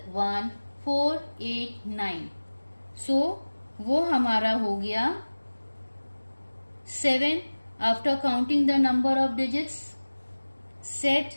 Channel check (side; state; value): both; inverted; correlation -1.00